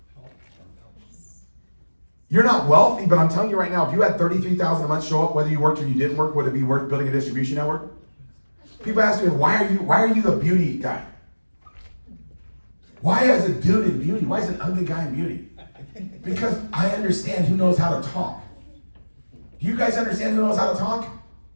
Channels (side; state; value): both; inverted; correlation -1.00